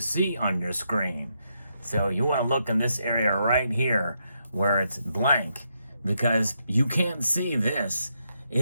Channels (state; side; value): inverted; both; correlation -0.80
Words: on your screen. So you want to look in this area right here where it's blank, because you can't see this.